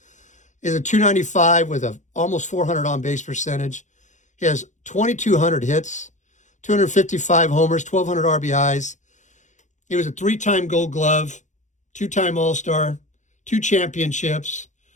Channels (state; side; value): late; right; 0.35 ms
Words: Is a 295 with a almost 400 on base percentage. He has 2,200 hits, 255 homers, 1,200 RBIs. He was a 3-time Gold Glove, 2-time All-Star, 2 championships,